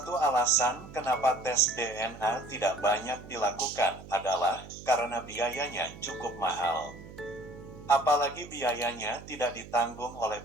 alasan kenapa tes DNA tidak banyak dilakukan adalah karena biayanya cukup mahal. Apalagi biayanya tidak ditanggung oleh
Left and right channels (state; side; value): noise; right; hum, 16 dB below the sound